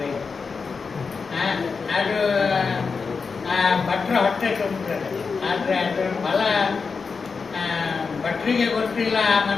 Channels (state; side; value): quieter; right; 5.0 dB